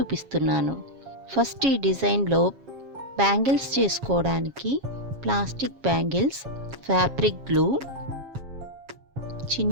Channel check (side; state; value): left; late; 7.3 ms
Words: ఫస్ట్ ఈ డిజైన్లో బ్యాంగిల్స్ చేసుకోవడానికి ప్లాస్టిక్ బ్యాంగిల్స్, ఫ్యాబ్రిక్ గ్లూ,